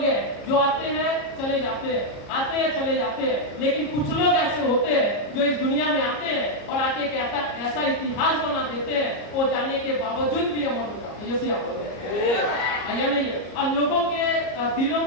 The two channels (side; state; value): right; late; 34 ms